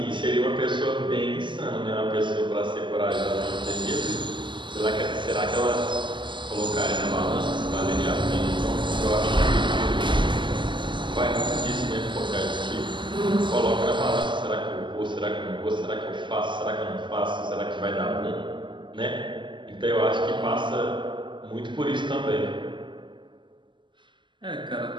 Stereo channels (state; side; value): late; left; 0.23 ms